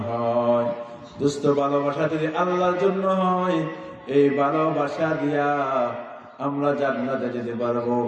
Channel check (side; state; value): both; identical; correlation 1.00